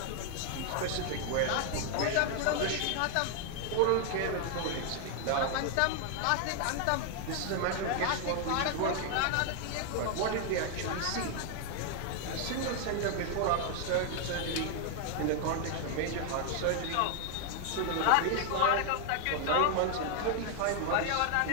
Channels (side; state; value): both; different; correlation 0.00